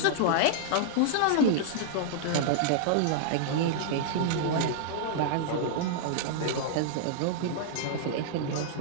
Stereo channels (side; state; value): both; different; correlation -0.01